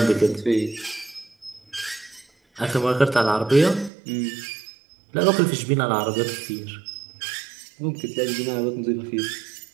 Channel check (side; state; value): left; drops out; at 3.9 s